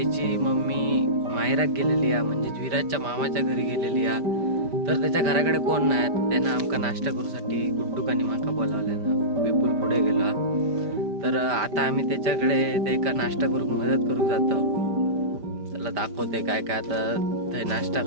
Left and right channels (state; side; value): late; left; 5.0 ms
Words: मम्मी माहेरात गेलेली आहे, म्हणजे विराजच्या मामाच्या घरी गेलेली आहे. तर त्याच्या घराकडे कोण नाही, त्यानं आमका नाश्ता करूसाठी गुड्डूकानी माका बोलावल्यानं विपुल पुढे गेला. तर आता आम्ही त्याच्याकडे ते का नाश्ता करू मदत करू जातो. त्याला दाखवते काय काय आता ते नाश्ता